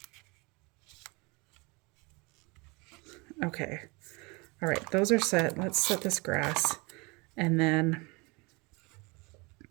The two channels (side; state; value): left; quieter; 27.6 dB